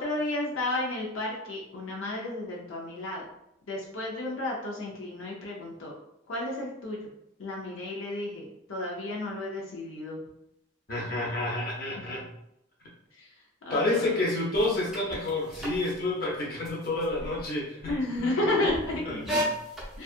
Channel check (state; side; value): normal; both; correlation 0.33